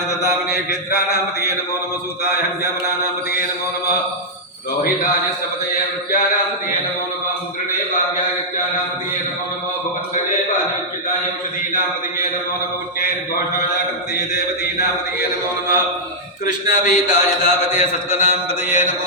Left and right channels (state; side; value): normal; both; correlation -0.07